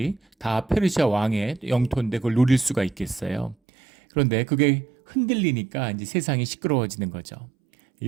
다 페르시아 왕의 영토인데 그걸 노릴 수가 있겠어요. 그런데 그게 흔들리니까 이제 세상이 시끄러워지는 거죠.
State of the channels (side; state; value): left; drops out; at 3.6 s